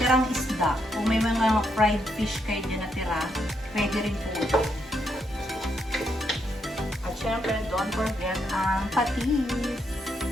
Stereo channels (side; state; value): both; normal; correlation 0.78